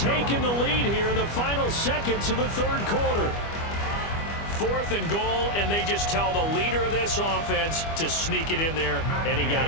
the lead here in the final seconds of the 3rd quarter. 4th and goal, and they just tell the leader of this offense to sneak it in there, and he got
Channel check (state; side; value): late; right; 25 ms